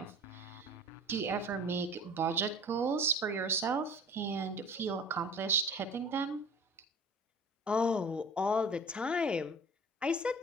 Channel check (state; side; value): normal; both; correlation 0.43